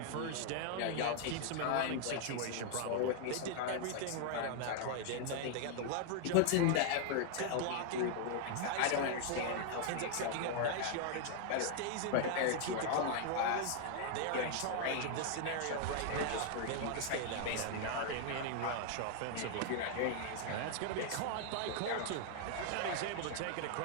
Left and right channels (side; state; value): both; different; correlation 0.00